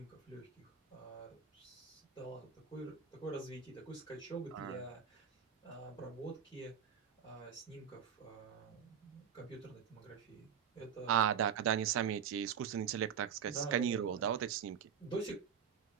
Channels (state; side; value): quieter; left; 7.8 dB